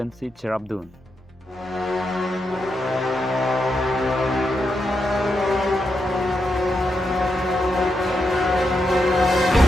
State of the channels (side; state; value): both; normal; correlation 0.84